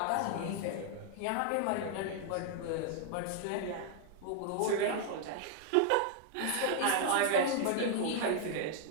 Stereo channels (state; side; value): different; both; correlation 0.00